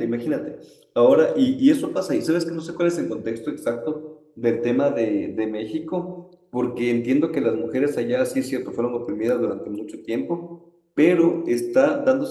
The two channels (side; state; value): both; identical; correlation 1.00